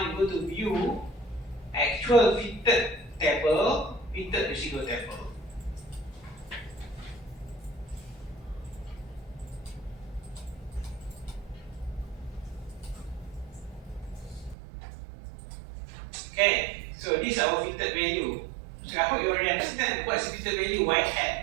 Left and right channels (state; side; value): drops out; left; at 14.6 s